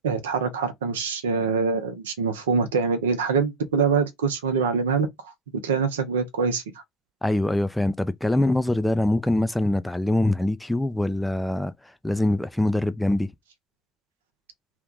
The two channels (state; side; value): normal; both; correlation 0.36